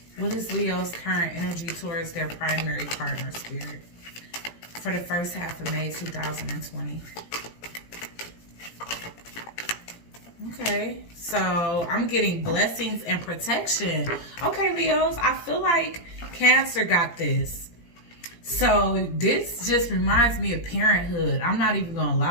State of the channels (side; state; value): right; late; 17 ms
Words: What is Leo's current energy towards their primary partner, Spirit, for the first half of May 2020? Okay, so I'm getting blessings and protection. Okay, Leos, I feel like Cancer got this. So this just reminds me of parenthood. I'm not even gonna